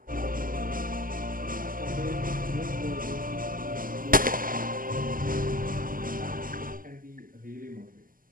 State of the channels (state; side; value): late; left; 0.41 ms